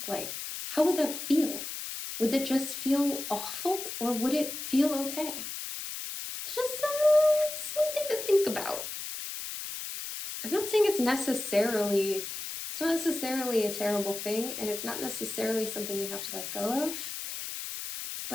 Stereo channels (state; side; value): noise; left; hiss, 7 dB below the sound